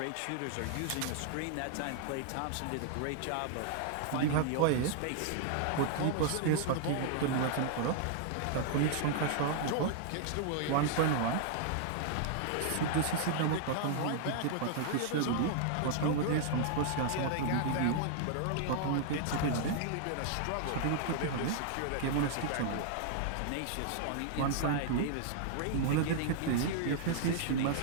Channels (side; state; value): both; different; correlation -0.01